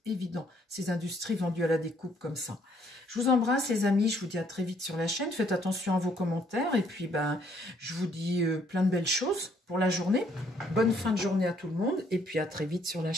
évident. Ces industries vendues à la découpe comme ça. Je vous embrasse, les amis. Je vous dis à très vite sur la chaîne. Faites attention à vos commentaires. Et puis, ben, je vous dis plein de belles choses pour la journée. Bonne fin de journée à tout le monde. Et puis, à très vite sur la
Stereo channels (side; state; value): both; normal; correlation 0.67